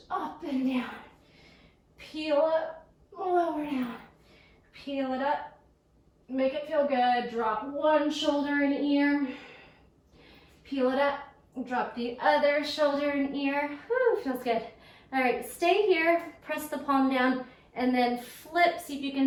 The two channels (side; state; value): both; identical; correlation 1.00